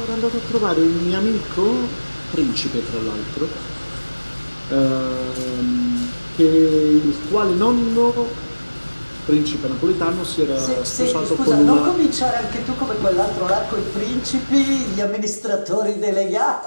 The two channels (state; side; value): inverted; both; correlation -1.00